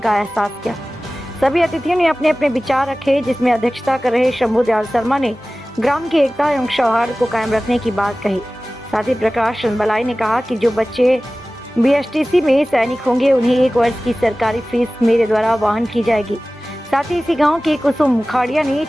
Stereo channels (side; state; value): both; normal; correlation 0.97